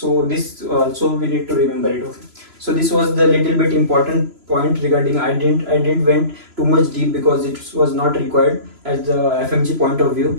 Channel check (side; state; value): left; late; 3.0 ms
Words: this also we need to remember it. Okay. So this was the little bit important point regarding. I didn't went too much deep because it was not required as the FMG point of